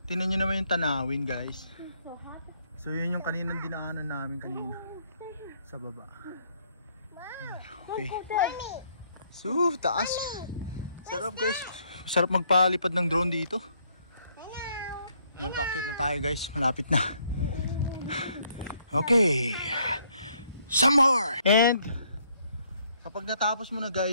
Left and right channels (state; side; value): inverted; both; correlation -0.69